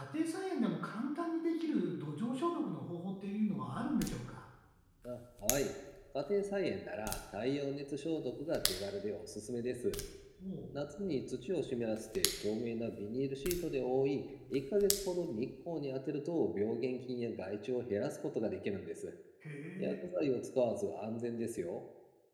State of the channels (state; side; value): identical; both; correlation 1.00